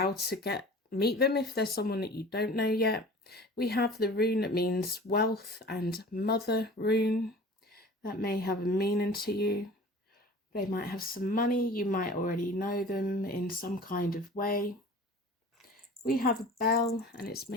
to meet them if there's someone that you don't know yet. We have the rune that means wealth and mother rune. That may have a meaning to you. They might have some money. You might already know them in some kind of way. We have a bell and it's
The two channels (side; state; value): both; normal; correlation 0.42